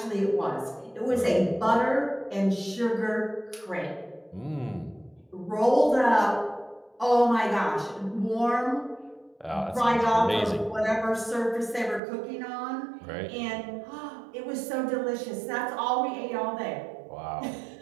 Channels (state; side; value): drops out; left; at 12.0 s